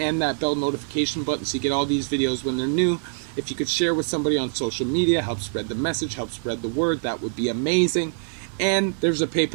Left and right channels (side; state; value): left; silent; digital silence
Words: that bell notification button so you get all these videos when they're new. If you could share with somebody on social media, help spread the message, help spread the word, that would be amazing. And there's a